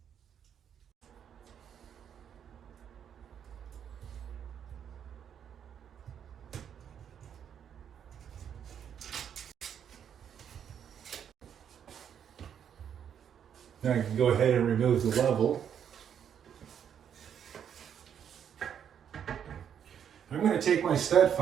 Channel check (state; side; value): quieter; left; 8.5 dB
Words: Now I can go ahead and remove the level. I'm going to take my stud